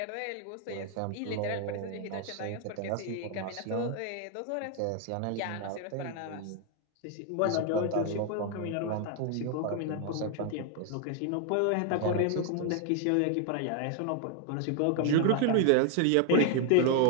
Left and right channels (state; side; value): different; both; correlation 0.00